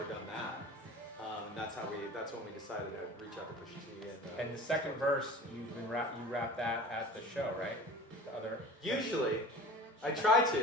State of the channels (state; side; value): normal; both; correlation 0.40